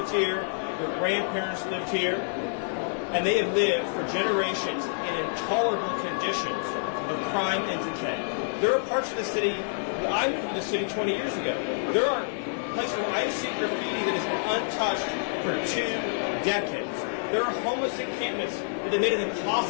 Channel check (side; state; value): right; silent; digital silence